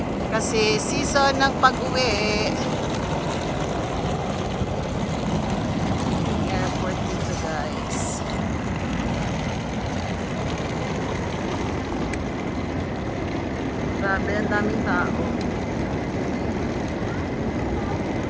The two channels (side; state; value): both; identical; correlation 1.00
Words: Kasi season ng pag-uwi. Airport dito guys. Grabe, ang daming tao.